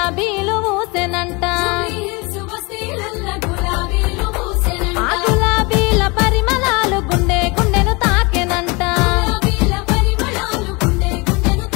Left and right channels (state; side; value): quieter; right; 27.1 dB